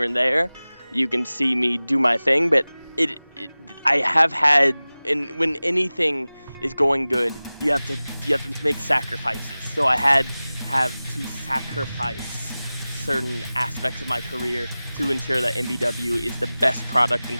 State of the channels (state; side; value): inverted; both; correlation -0.98